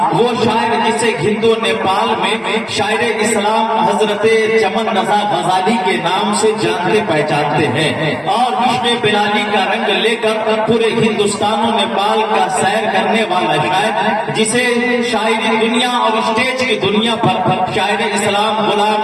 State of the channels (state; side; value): identical; both; correlation 1.00